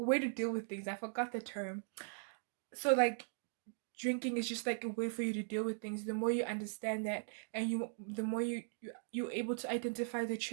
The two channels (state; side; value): silent; left; digital silence